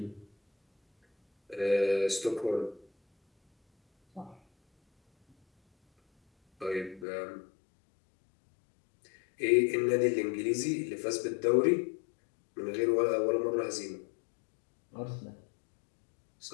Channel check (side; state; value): right; drops out; at 7.1 s